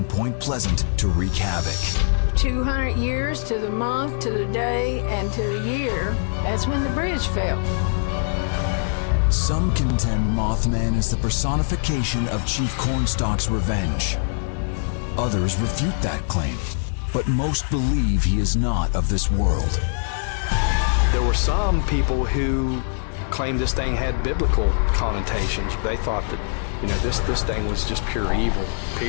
Point Pleasant to wreak havoc. 200 years to the month, to the day, and to the year. That's when the bridge fell. Some contend Mothman is the personification of Chief Cornstalk's revenge. Others refute that claim, but most believe he is not of this world. There were some people who claimed this thing had biblical connotations. They thought that, this thing was just pure evil,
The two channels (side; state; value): right; silent; digital silence